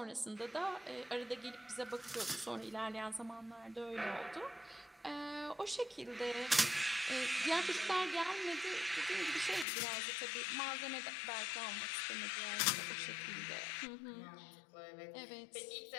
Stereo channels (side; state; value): right; drops out; at 9.7 s